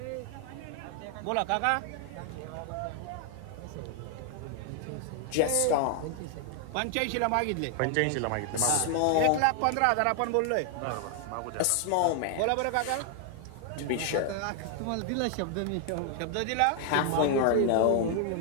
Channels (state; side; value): different; both; correlation 0.00